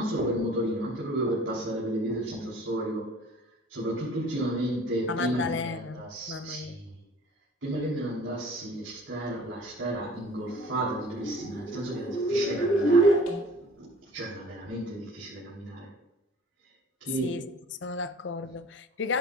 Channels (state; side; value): normal; both; correlation 0.47